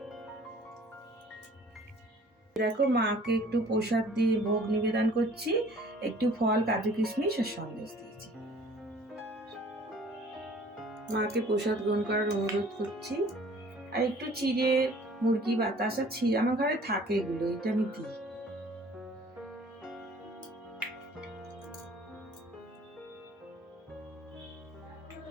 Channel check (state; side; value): normal; both; correlation 0.52